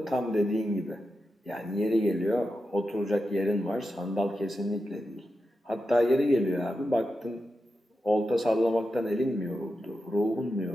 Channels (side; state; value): both; normal; correlation 0.89